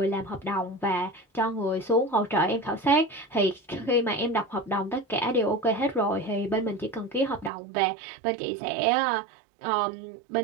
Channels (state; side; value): drops out; left; at 7.5 s